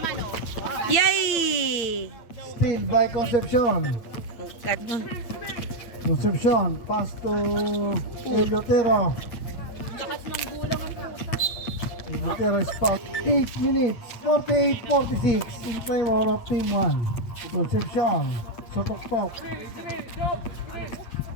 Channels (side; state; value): right; late; 8.8 ms